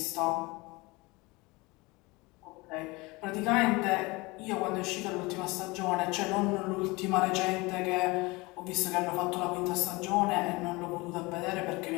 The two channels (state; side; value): quieter; right; 23.9 dB